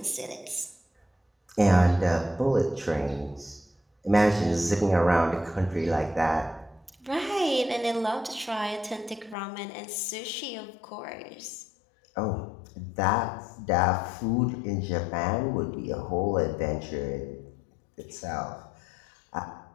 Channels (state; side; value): drops out; right; at 9.3 s